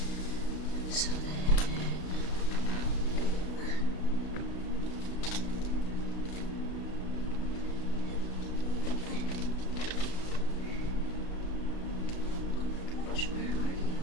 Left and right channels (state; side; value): late; right; 33 ms